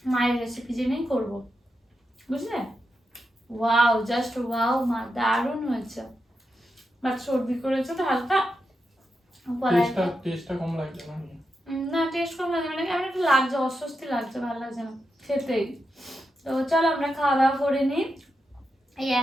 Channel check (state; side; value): normal; both; correlation 0.87